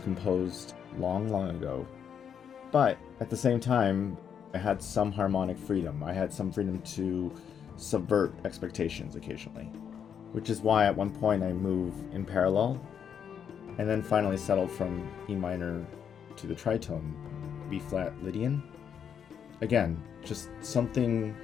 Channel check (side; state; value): right; quieter; 7.9 dB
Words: long ago. But at the same time, I had some harmonic freedom. I had some freedom to subvert expectations occasionally, which is why at one point I move in parallel and then finally settled from E minor to the tritone B flat Lydian. Again, just something